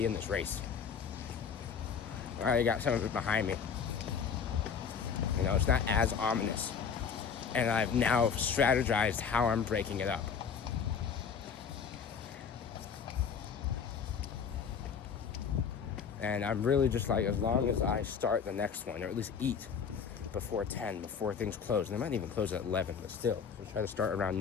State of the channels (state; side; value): quieter; right; 6.6 dB